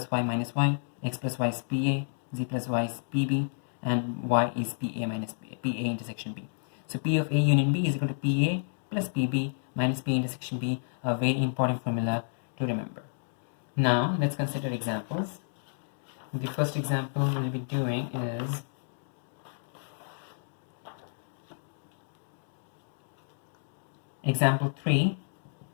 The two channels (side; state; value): right; silent; digital silence